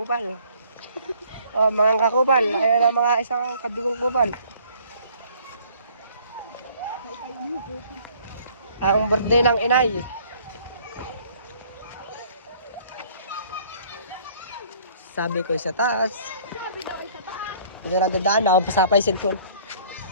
Oh, mga kakupal. Ayan ang mga isang kadugong kupal. Ang birthday ng inay. Sabi ko sa taas. Ito na dadaan, nakapasa pa yung cellphone.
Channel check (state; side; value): inverted; both; correlation -0.57